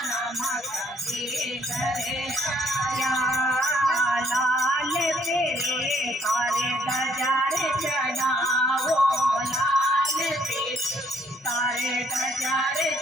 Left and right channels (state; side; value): normal; both; correlation 0.66